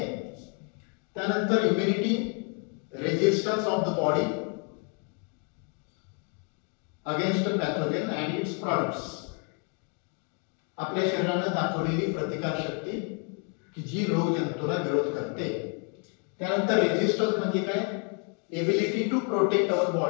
त्यानंतर immunity, resistance of the body against pathogen and its products. आपल्या शरीराने दाखवलेली प्रतिकारशक्ती की जी रोग जंतूला विरोध करते. त्यानंतर रेजिस्टन्स म्हणजे काय? Ability to protect our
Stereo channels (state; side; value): quieter; right; 39.1 dB